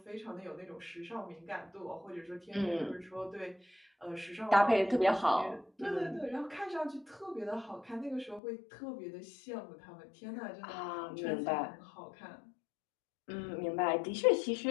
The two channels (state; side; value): drops out; right; at 8.4 s